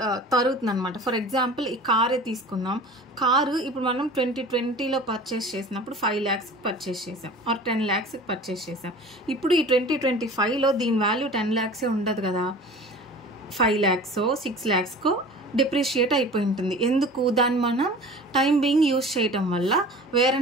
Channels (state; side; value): normal; both; correlation 0.41